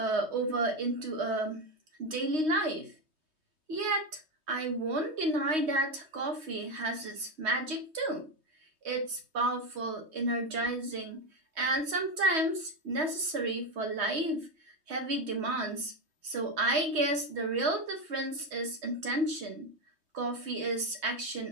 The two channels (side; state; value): left; late; 3.2 ms